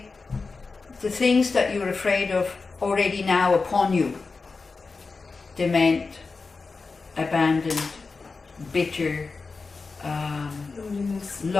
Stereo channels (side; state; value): right; quieter; 4.3 dB